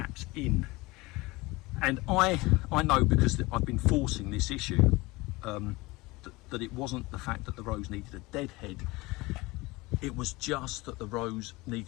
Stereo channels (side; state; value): right; quieter; 22.2 dB